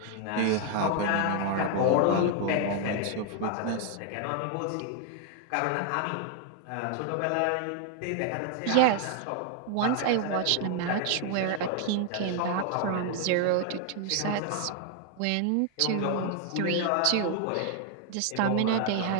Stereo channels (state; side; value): different; both; correlation 0.00